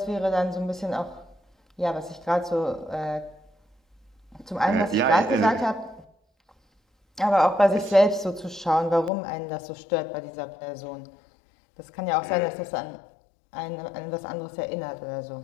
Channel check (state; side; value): drops out; right; at 9.1 s